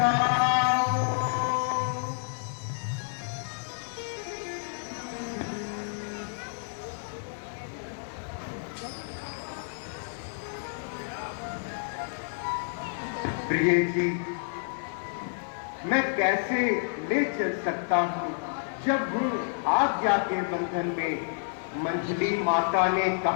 प्रिय जी, मैं कैसे ले चल सकता हूँ जब हूँ आज्ञा के बंधन में। मंजली माता ने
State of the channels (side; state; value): right; silent; digital silence